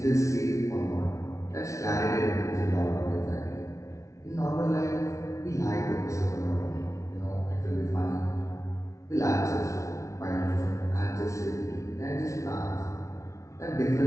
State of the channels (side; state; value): right; late; 0.14 ms